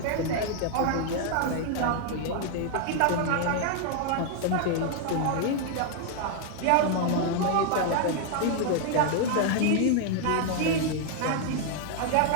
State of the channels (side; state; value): both; different; correlation 0.00